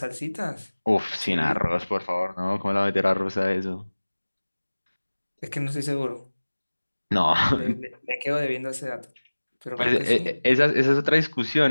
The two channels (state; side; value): inverted; both; correlation -1.00